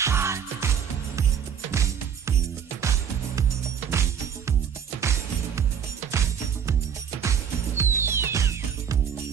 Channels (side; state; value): left; quieter; 7.8 dB